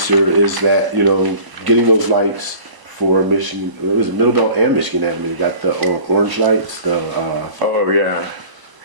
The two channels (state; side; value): late; left; 1.0 ms